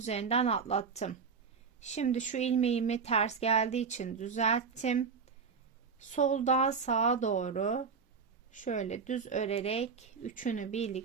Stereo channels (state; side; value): quieter; left; 5.6 dB